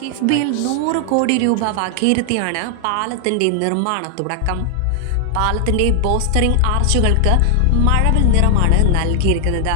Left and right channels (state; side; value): different; both; correlation 0.00